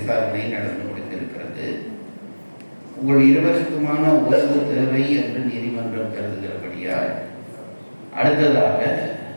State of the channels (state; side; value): inverted; both; correlation -1.00